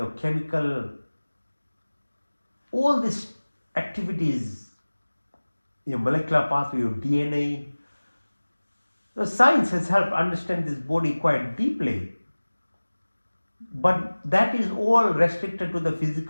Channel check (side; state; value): both; inverted; correlation -1.00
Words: chemical, all these activities, your molecular pathway, your DNA. The science has helped understand this body quite deeply. But that is all restricted to the